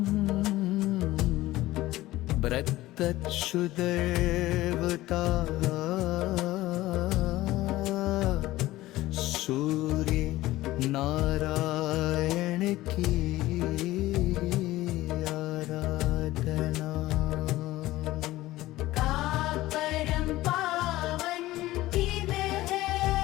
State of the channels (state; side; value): quieter; right; 16.9 dB